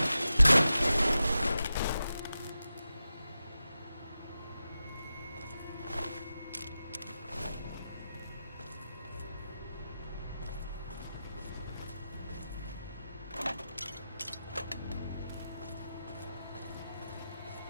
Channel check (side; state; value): both; inverted; correlation -0.92